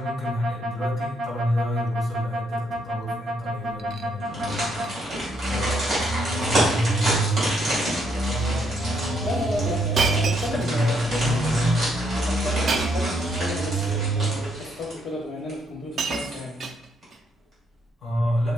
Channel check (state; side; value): normal; both; correlation 0.74